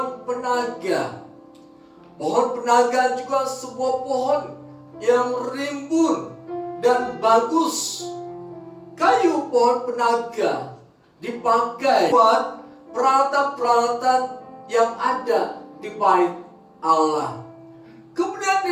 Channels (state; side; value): identical; both; correlation 1.00